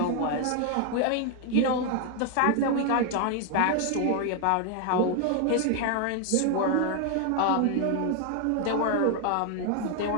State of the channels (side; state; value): both; different; correlation 0.01